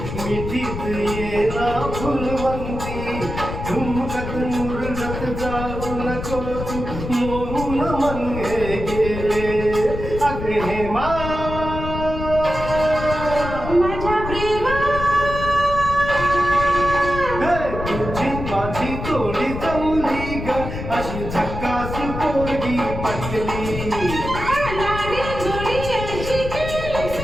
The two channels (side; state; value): left; noise; rumble, 7 dB below the sound